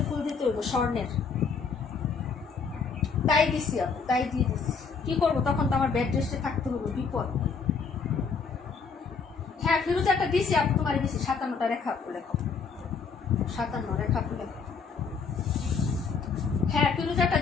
ফুল দিতে হইব স্বর্ণের। তাই দিছি আপু, তাই দিয়ে দিছি। কি করবো, তখন তো আমার বেড রেস্টে থাকতে হইব, বিপদ। হ্যাঁ, ফিরোজ একটা দিছি আপু, তোমার দিছি 57টা। রেখা আপু লেখো, 57 রেখা আপু লেখো। হ্যাঁ, ফিরোজ একটা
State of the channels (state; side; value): quieter; right; 5.4 dB